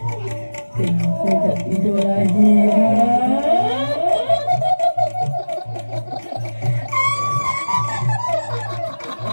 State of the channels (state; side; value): inverted; both; correlation -1.00